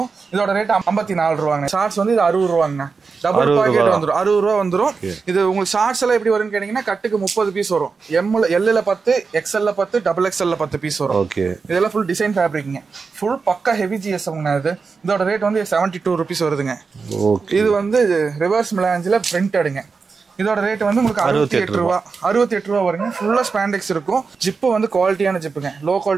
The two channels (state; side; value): quieter; left; 4.9 dB